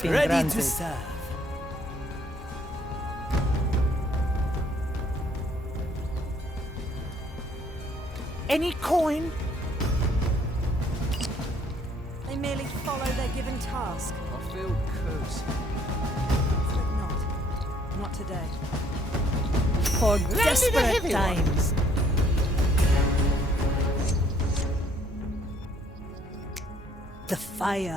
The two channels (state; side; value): normal; both; correlation 0.64